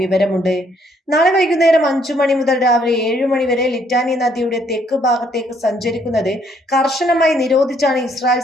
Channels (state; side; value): normal; both; correlation 0.68